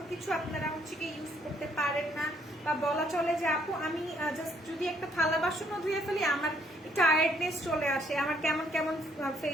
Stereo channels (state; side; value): normal; both; correlation 0.67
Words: কিছু আপনারা হচ্ছে কি ইউজ করতে পারেন না, বা বলা চলে যে আপু আমি জাস্ট যদি একটা থালা বাসনও ধুয়ে ফেলি আমার টায়ার্ডনেস চলে আসে, আমার কেমন কেমন